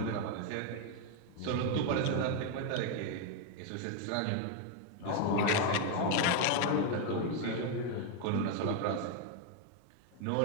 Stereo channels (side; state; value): both; different; correlation 0.01